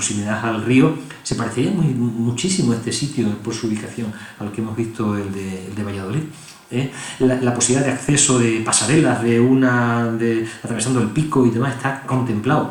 al río se parecería muchísimo a este sitio por su ubicación al que hemos visto el de Valladolid. La posibilidad de acceso de pasarelas atravesando el pico y demás está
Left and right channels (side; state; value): both; identical; correlation 1.00